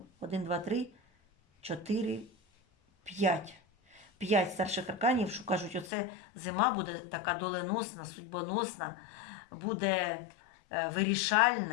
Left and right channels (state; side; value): drops out; right; at 5.9 s